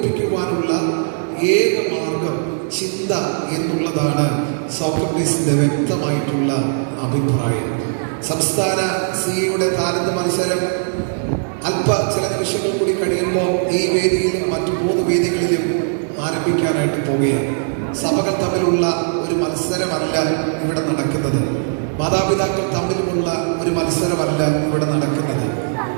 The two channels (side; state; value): left; silent; digital silence